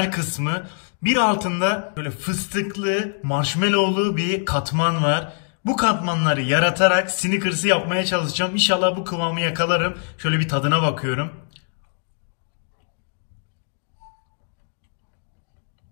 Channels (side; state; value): right; silent; 63 dB below the other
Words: kısmı. Bir altında böyle fıstıklı, marshmallowlu bir katman var. Bu katmanları yaratarak Snickers'ı yapmaya çalışacağım. İnşallah bu kıvamı yakalarım. Şöyle bir tadına bakıyorum.